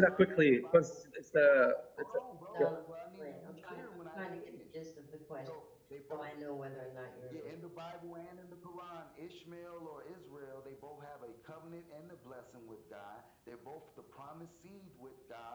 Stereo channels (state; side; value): identical; both; correlation 1.00